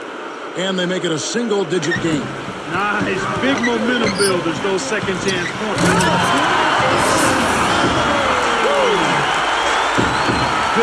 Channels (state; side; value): identical; both; correlation 1.00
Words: And they make it a single-digit game. Nice. Big momentum builders, those second chance points.